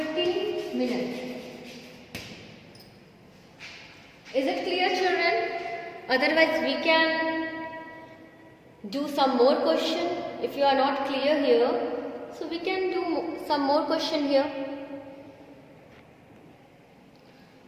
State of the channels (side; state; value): both; identical; correlation 1.00